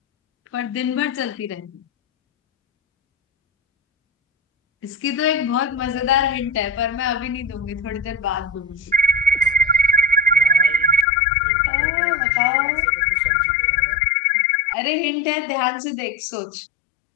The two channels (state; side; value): drops out; right; at 11.1 s